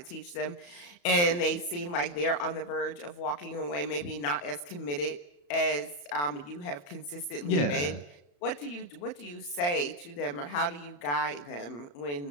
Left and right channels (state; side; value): late; right; 34 ms